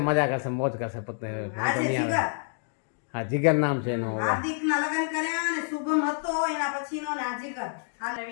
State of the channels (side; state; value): right; silent; 59 dB below the other